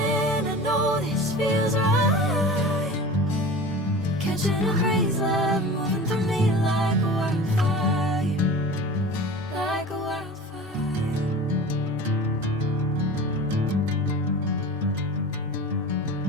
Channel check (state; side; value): normal; both; correlation 0.36